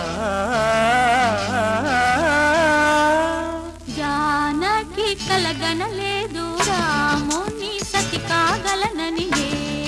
జానకి కలగనలేదు రాముని సతి కాగలనని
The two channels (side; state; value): both; identical; correlation 1.00